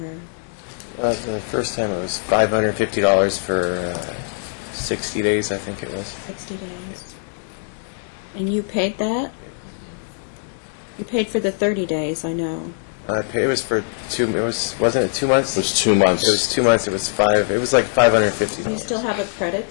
The first time it was $550 for 60 days, I think it was. 60 days. And you paid that? You paid for the 30 days, I know. It was for wasn't it 2 months? It was 2 months. It was 2 months. It was like $550. Do you still have a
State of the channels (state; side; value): silent; right; 64 dB below the other